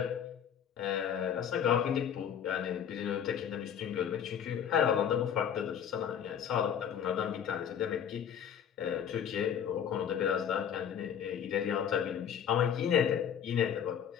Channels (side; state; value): right; quieter; 8.7 dB